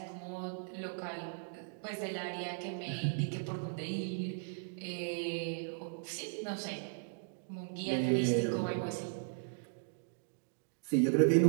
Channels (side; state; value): left; silent; digital silence